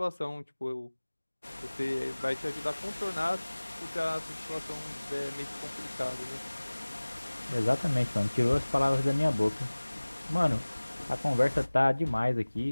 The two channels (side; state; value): both; inverted; correlation -1.00